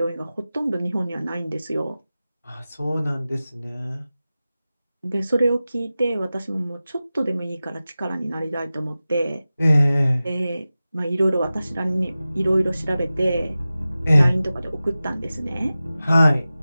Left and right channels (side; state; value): both; inverted; correlation -0.95